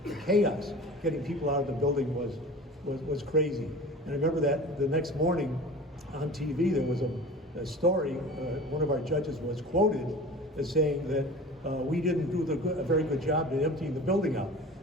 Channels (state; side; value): normal; both; correlation 0.38